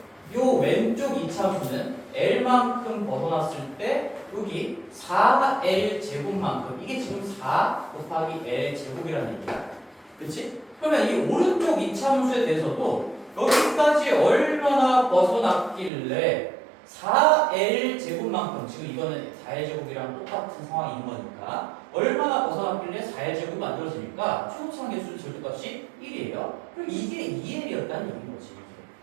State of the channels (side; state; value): left; drops out; at 15.9 s